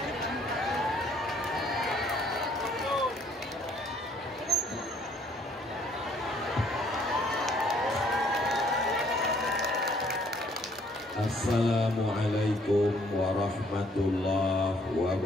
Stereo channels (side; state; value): both; normal; correlation 0.64